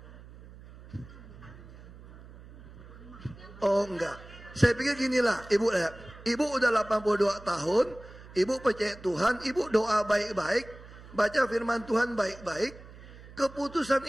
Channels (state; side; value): noise; right; hum, 18 dB below the sound